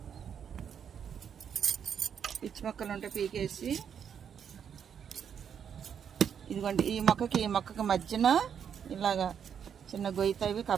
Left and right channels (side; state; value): left; quieter; 7.9 dB